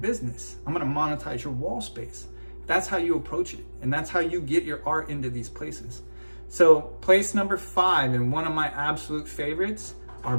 I'm gonna monetize your wall space. That's how you approach it. And that's how you get your art into these places. So place number 5, and one of my absolute favorites, are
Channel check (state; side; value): inverted; both; correlation -1.00